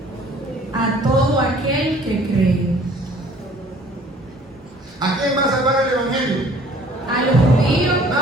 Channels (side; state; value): both; normal; correlation 0.54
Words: A todo aquel que cree. ¿A quién va a salvar el Evangelio? A los judíos.